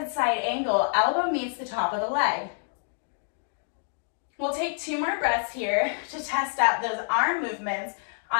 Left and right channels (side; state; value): right; silent; digital silence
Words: side angle, elbow meets the top of the leg. We'll take 2 more breaths here to test out those arm movements